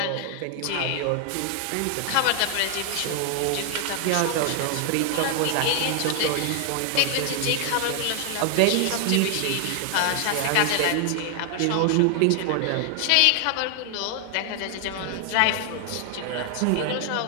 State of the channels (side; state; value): both; different; correlation 0.00